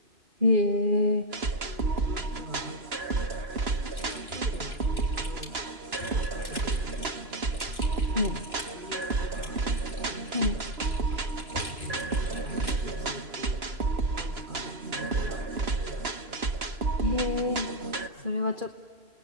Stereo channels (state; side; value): late; left; 2.9 ms